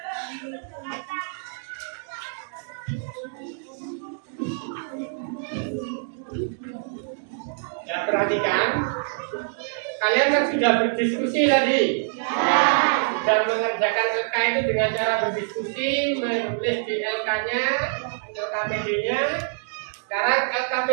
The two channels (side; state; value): left; silent; digital silence